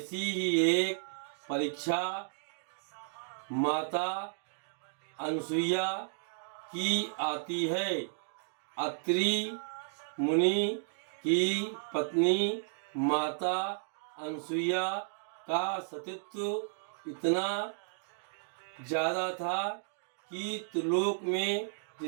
ही एक परीक्षा माता अनसुईया की आती है। अत्रि मुनि की पत्नी माता अनसुईया का सतीत्व इतना ज़्यादा था कि त्रिलोक में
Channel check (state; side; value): silent; left; digital silence